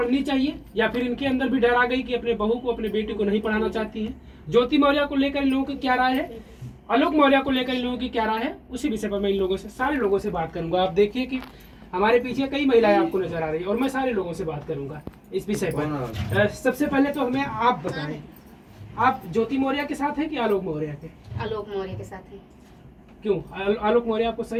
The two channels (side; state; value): both; identical; correlation 1.00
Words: चाहिए, या फिर इनके अंदर भी डर आ गई कि अपने बहू को अपने बेटी को नहीं पढ़ाना चाहती हैं। ज्योति मौर्य को लेकर इन लोगों की क्या राय है, आलोक मौर्य को लेकर इन लोगों की क्या राय है, उसी विषय पर मैं इन लोगों से सारे लोगों से बात करूंगा। आप देखिए कि हमारे पीछे कई महिलाएं आपको नजर आ रही है और मैं सारे लोगों से बात करूंगा इस विषय पर। सबसे पहले तो हमें आप बताएं, आप ज्योति मौर्य के साथ हैं कि आलोक मौर्य के? आलोक मौर्य के साथ हैं। क्यों आलोक मौर्य आपको